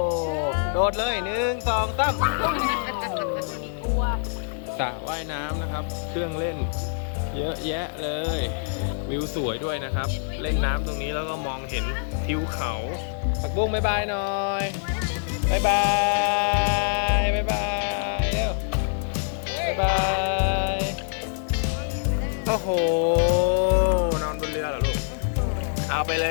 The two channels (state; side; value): silent; right; digital silence